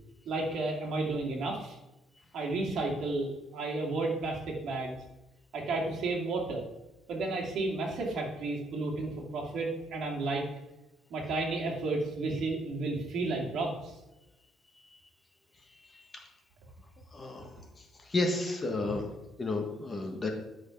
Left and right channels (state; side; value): normal; both; correlation 0.70